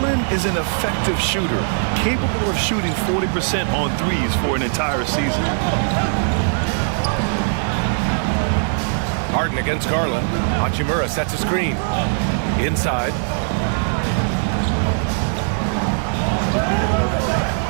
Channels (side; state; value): left; silent; 66 dB below the other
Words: is an effective shooter, capable of shooting 40% on threes for an entire season. Harden against Garland. Hachimura sets a screen. Inside.